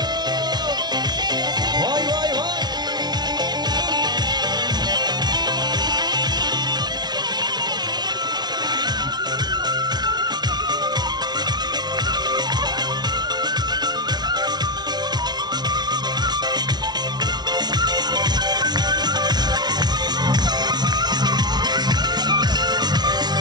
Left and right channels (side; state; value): left; late; 0.20 ms